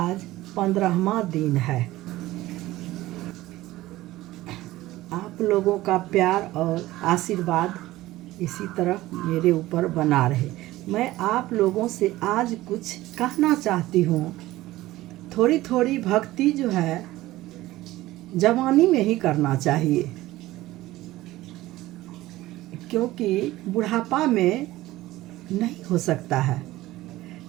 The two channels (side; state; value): left; quieter; 17.0 dB